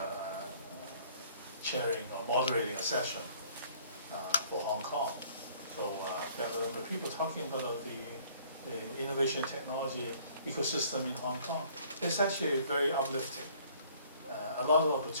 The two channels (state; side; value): inverted; both; correlation -0.57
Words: chairing or moderating a session for Hong Kong. So there were people talking about the innovation technology ecosystem in Hong Kong. It's actually very uplifting. A lot of